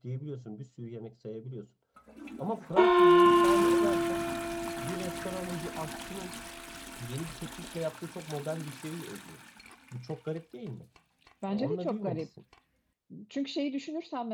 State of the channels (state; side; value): identical; both; correlation 1.00